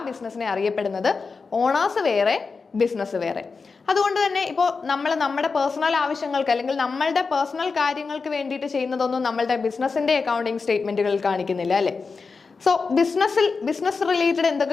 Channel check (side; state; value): right; quieter; 4.7 dB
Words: ബിസിനസ്സിനെ അറിയപ്പെടുന്നത്. ഓണേഴ്സ് വേറെ, ബിസിനസ് വേറെ. അതുകൊണ്ട് തന്നെ ഇപ്പോൾ നമ്മൾ നമ്മുടെ പേഴ്സണൽ ആവശ്യങ്ങൾക്ക് അല്ലെങ്കിൽ നമ്മളുടെ പേഴ്സണൽ കാര്യങ്ങൾക്ക് വേണ്ടിയിട്ട് ചെയ്യുന്നതൊന്നും നമ്മളുടെ ബിസിനസ്സിൻ്റെ അക്കൗണ്ടിങ് സ്റ്റേറ്റ്മെൻറ്റുകളിൽ കാണിക്കുന്നില്ല അല്ലേ. സോ ബിസിനസ് റിലേറ്റഡ്